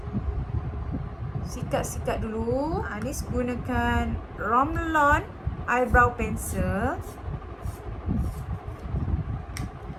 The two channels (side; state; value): both; identical; correlation 1.00